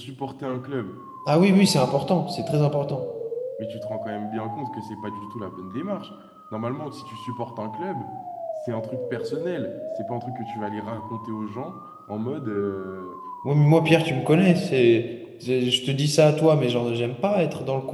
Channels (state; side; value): identical; both; correlation 1.00